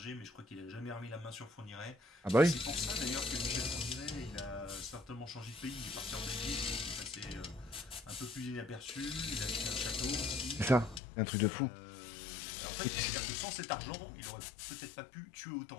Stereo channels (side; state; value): right; drops out; at 11.0 s